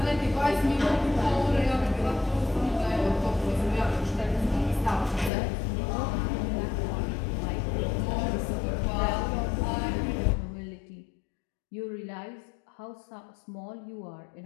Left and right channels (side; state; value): right; drops out; at 5.3 s